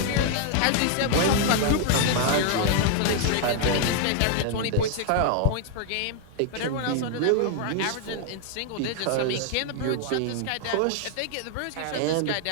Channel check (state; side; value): different; both; correlation 0.00